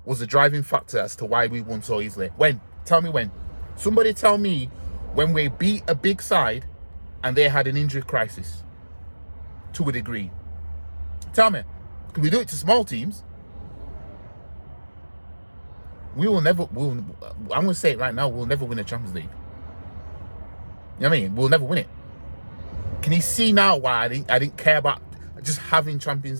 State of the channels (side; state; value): both; inverted; correlation -1.00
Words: was the driving factor as to why we won so easily? When? Tell me when. Somebody tell me when we beat a big side and they had an injury crisis to a degree. Tell me. Can we do it to small teams? I'm going to say it right now, we'll never win a Champions League. You know what I mean? We'll never win it. Can you see now why I didn't care about just having